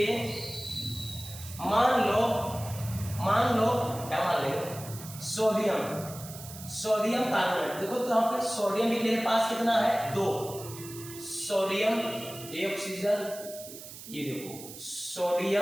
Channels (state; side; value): noise; right; hiss, 14 dB below the sound